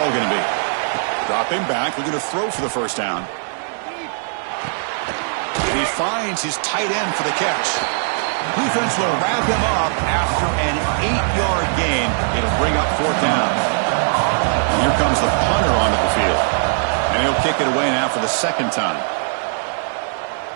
going to be? Drop him back. We're going to throw for the first down. He finds his tight end for the catch. Defense will wrap him up after an 8-yard gain. It'll bring up 4th down. Here comes the punter onto the field. And he'll kick it away now for the 2nd time.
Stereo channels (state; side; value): silent; left; 58 dB below the other